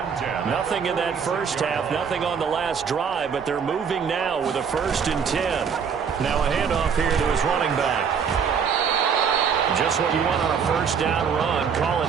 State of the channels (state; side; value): quieter; left; 6.7 dB